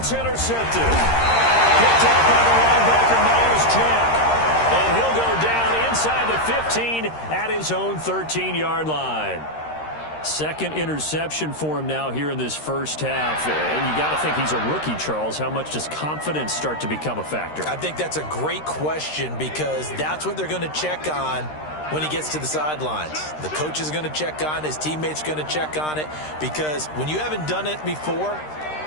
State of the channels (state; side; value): late; right; 13 ms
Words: intercepted. Picked up by the linebacker, Miles Jack. And he'll go down inside the 15 at his own 13-yard line. Second interception for him now here in this first half. And you got to think he's a rookie, Charles. How much does confidence start to become a factor? I think that's a great question because that's what they're going to check on when he gets to the sidelines. The coach is going to check on it. His teammates going to check on it because when you haven't done it before,